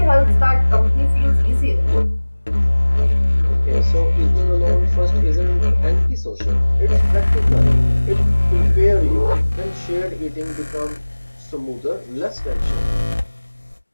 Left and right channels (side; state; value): both; inverted; correlation -1.00